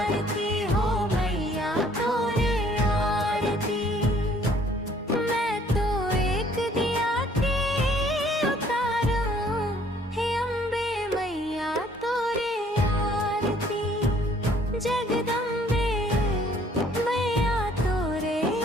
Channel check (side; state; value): both; normal; correlation 0.60